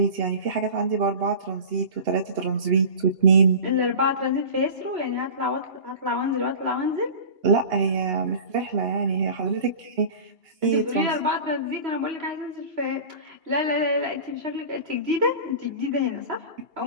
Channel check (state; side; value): late; left; 2.8 ms